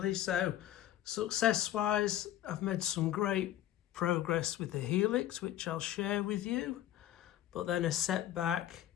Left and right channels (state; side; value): quieter; right; 12.7 dB